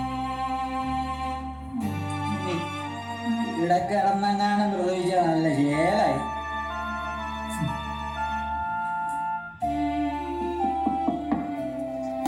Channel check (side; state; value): both; identical; correlation 1.00